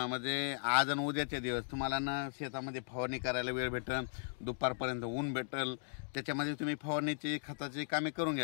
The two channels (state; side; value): silent; right; digital silence